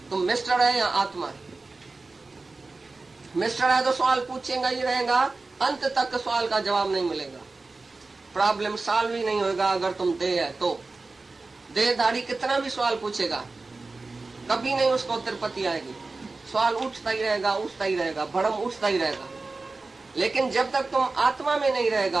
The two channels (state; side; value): quieter; left; 3.6 dB